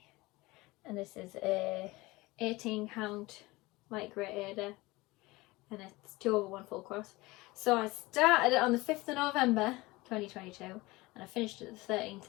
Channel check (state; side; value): quieter; right; 21.3 dB